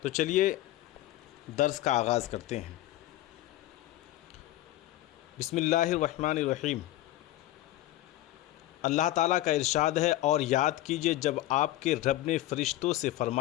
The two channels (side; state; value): right; quieter; 15.2 dB